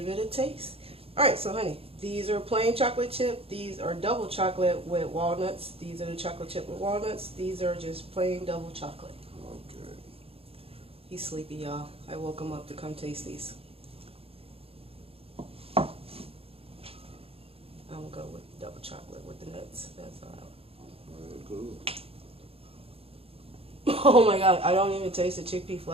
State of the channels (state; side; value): late; left; 0.28 ms